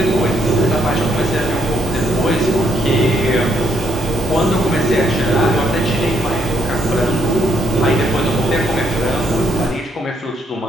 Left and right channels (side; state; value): both; normal; correlation 0.73